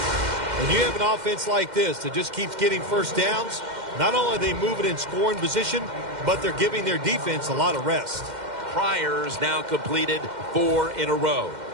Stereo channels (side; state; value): left; late; 2.1 ms